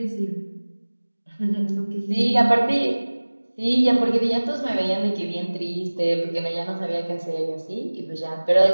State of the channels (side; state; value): both; inverted; correlation -1.00